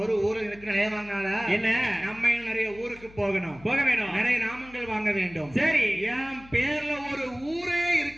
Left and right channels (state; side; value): noise; left; hum, 22 dB below the sound